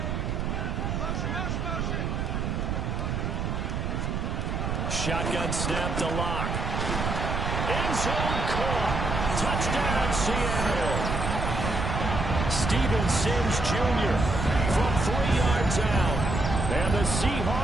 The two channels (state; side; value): noise; right; rumble, 1 dB below the sound